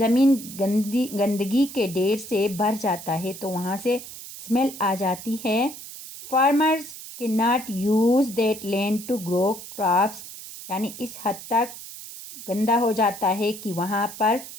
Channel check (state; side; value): noise; right; hiss, 13 dB below the sound